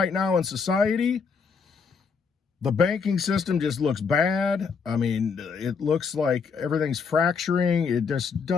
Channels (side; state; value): right; quieter; 5.6 dB